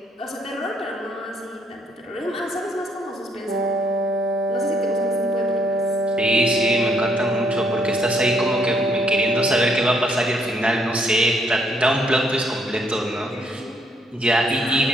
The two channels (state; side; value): normal; both; correlation 0.70